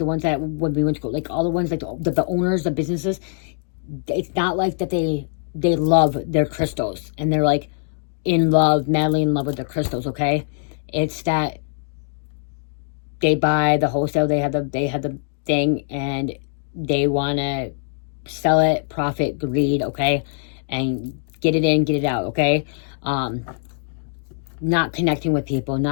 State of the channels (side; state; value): right; silent; digital silence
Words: ones that when we went to go, like, all the ones, like, the owners, the businesses, it's not like that they love their crystals, and they're, like, in love, madly in love with their crystals, okay? It's that they buy the wholesale, they have the thing, and they want to sell it, profit, greed, okay? And get it in, get it out, okay? Not connecting with people,